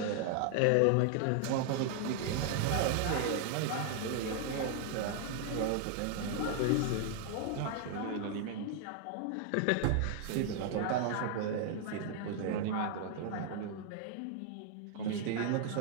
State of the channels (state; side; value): different; both; correlation 0.00